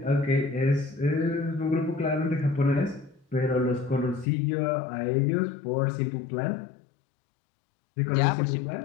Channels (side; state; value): right; drops out; at 4.2 s